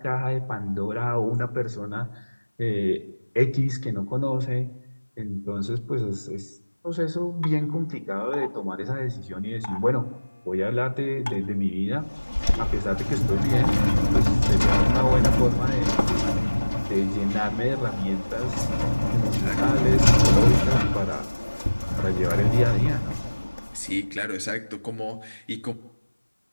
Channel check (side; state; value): both; inverted; correlation -1.00